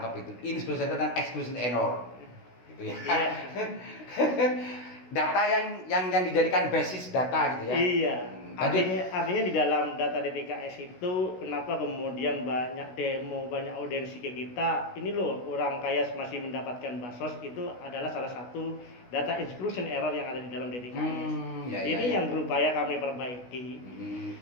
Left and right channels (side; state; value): right; late; 16 ms